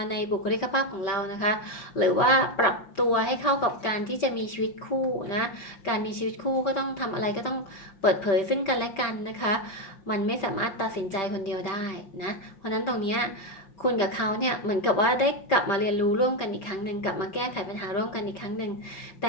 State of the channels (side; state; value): right; late; 5.1 ms